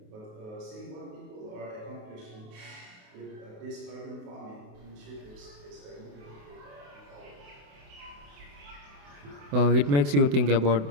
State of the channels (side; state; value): left; late; 28 ms